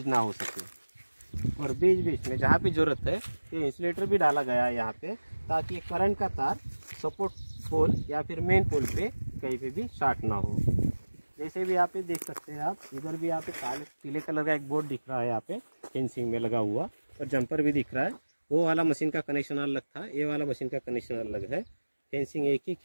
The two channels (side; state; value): both; inverted; correlation -1.00